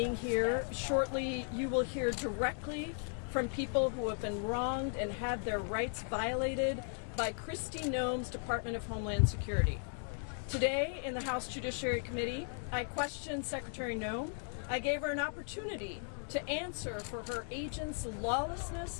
here. Shortly, you will hear directly from people who have been wronged and had their rights violated by Kristi Noem's Department of Homeland Security. Today, in the House Judiciary Committee, I questioned Secretary Noem. I gave her an opportunity to answer for her agents'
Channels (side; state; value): right; silent; 53 dB below the other